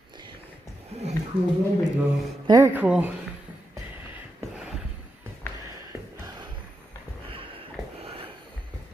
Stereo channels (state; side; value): normal; both; correlation 0.86